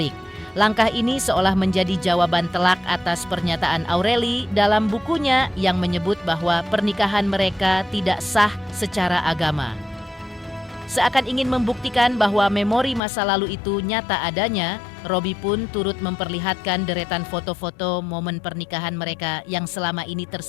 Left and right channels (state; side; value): drops out; right; at 13.0 s